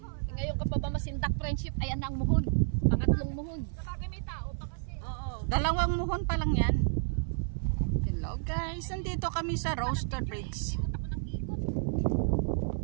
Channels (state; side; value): silent; left; 57 dB below the other